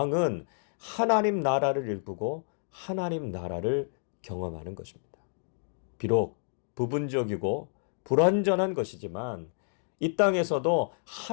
하나님 나라를 일구고 하나님 나라를 경험하는 것입니다. 비록 부분적이고 불완전한 것이지만 이 땅에서도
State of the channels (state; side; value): silent; right; 58 dB below the other